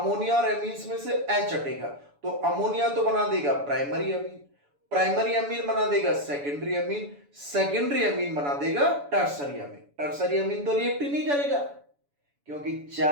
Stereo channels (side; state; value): left; late; 7.0 ms